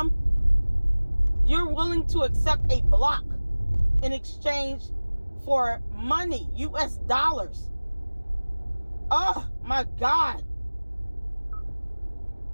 You're willing to accept a block in exchange for money, US dollars. Oh my God.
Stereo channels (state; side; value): inverted; both; correlation -1.00